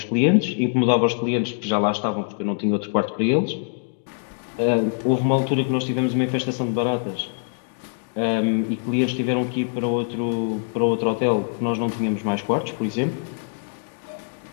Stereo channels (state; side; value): silent; right; digital silence